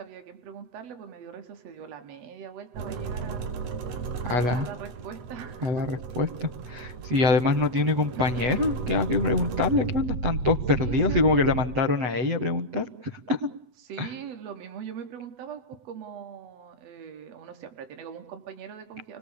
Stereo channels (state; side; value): late; left; 8.0 ms